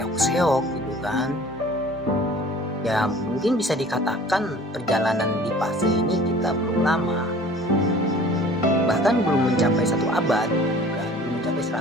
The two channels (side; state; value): both; normal; correlation 0.47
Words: gitu kan. Ya mungkin bisa dikatakan perjalanan di fase ini kita belum lama, bahkan belum mencapai 1 abad, kan? Belum mencapai